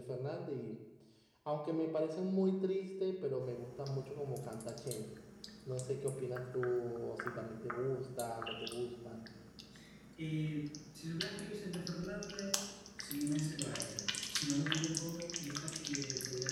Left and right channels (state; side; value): identical; both; correlation 1.00